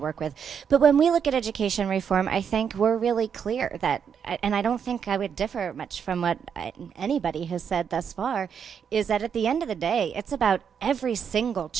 with. But when we look at education reform, I think we're really clear that, and I don't think I would differ much from what anybody has said thus far, is that at the end of the day, it's about every single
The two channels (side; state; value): left; quieter; 7.3 dB